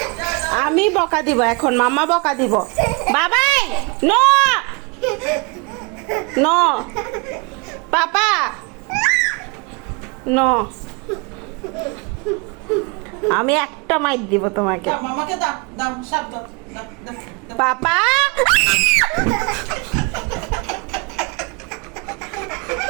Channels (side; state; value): left; quieter; 30.4 dB